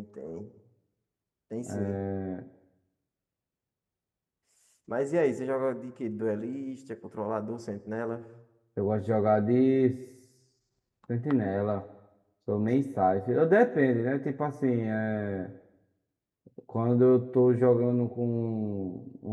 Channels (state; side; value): identical; both; correlation 1.00